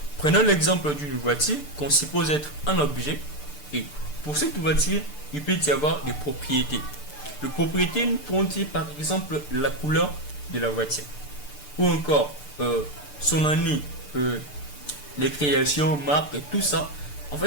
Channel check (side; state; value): right; late; 6.8 ms